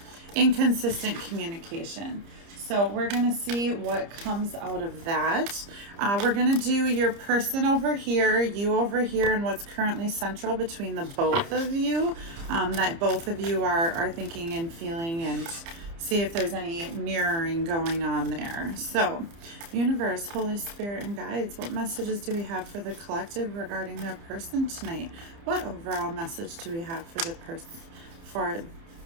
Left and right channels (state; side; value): late; left; 30 ms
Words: inconsistent communication. So we're going to see what comes out of that. We're going to do your person over here, you over here, and what's currently central between the both of you, that both of you are thinking and feeling, and see if there's any mirroring going on there. So, universe, Holy Spirit, and guides, what messages do we have for the collective regarding their person tonight? What overall message do we have for the person, for